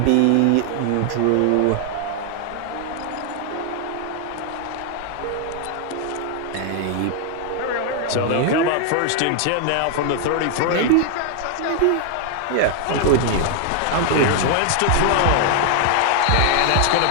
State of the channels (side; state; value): both; different; correlation 0.00